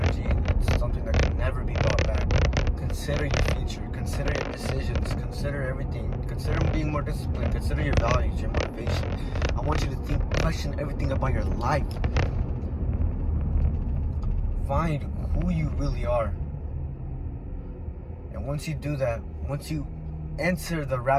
It's something that can never be bought back. Consider your future, consider your decisions, consider everything. Consider being more disciplined, consider your values, your motivation. I want you to question everything about your life. Find who you really are. And once you do that, once you enter the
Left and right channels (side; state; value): both; identical; correlation 1.00